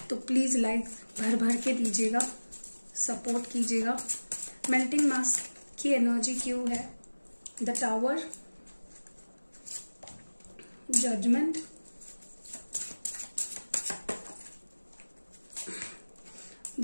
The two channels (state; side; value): inverted; both; correlation -1.00